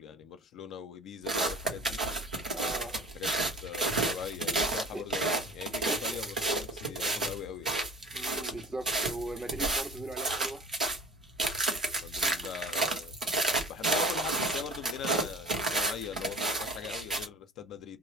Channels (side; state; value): both; normal; correlation 0.43